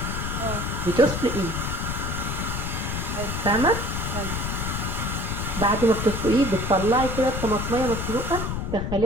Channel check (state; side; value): noise; left; rumble, 3 dB below the sound